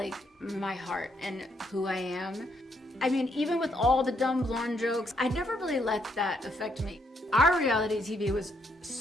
my heart and who I am. I mean, even with all the dumb blonde jokes, I never really let that affect me. Our reality TV was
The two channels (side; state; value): both; normal; correlation 0.74